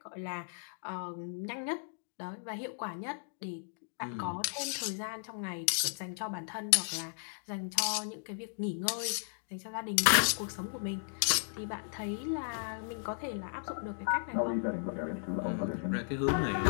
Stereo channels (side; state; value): right; silent; digital silence